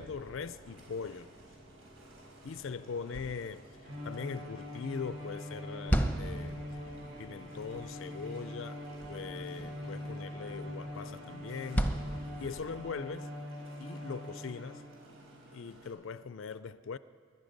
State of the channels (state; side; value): normal; both; correlation 0.62